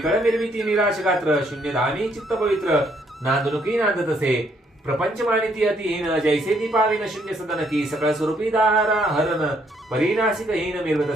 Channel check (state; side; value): normal; both; correlation 0.70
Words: निर्मिती निराश गात्र शून्य धामी चित्त पवित्र नांदनुकी नांदत असे प्रपंच मानिती अतिहीन जैसे दीपाविन शून्य सदन की सकळ स्वरूपी दारा हरण परिनाशिक हीन मिरवत